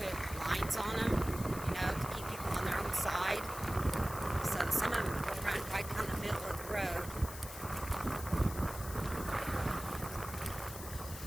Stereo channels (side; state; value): left; noise; hiss, 12 dB below the sound